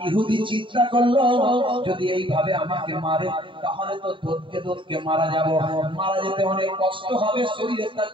ইহুদি চিন্তা করলো, যদি এইভাবে আমাকে মারে তাহলে তো দোদকে মারা যাব, মারা যেতে অনেক কষ্ট হবে, শরীরে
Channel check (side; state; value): left; late; 0.24 ms